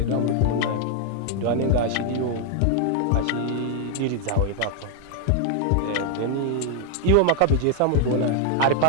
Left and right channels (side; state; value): both; different; correlation 0.00